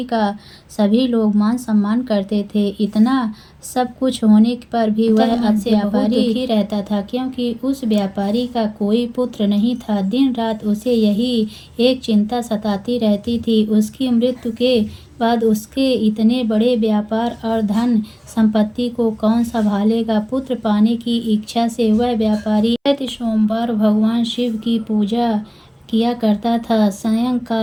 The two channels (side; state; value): both; identical; correlation 1.00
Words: का सभी लोग मान सम्मान करते थे। इतना सब कुछ होने पर भी वह अपने व्यापारी दुखी रहता था, क्योंकि उस व्यापारी का कोई पुत्र नहीं था। दिन रात उसे यही एक चिंता सताती रहती थी, उसकी मृत्यु के बाद उसके इतने बड़े व्यापार और धन संपत्ति को कौन संभालेगा। पुत्र पाने की इच्छा से वह व्यापारी प्रति सोमवार भगवान शिव की पूजा किया करता था।